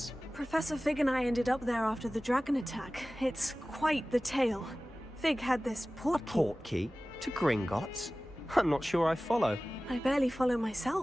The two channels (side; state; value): both; normal; correlation 0.97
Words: Professor Fig and I ended up there after the dragon attack. It's quite the tale. Fig had this Portkey? To Gringotts? I'm not sure I follow. I barely follow